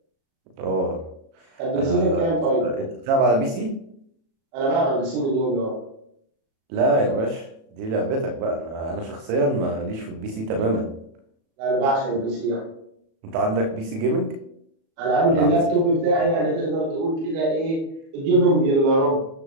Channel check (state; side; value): late; left; 37 ms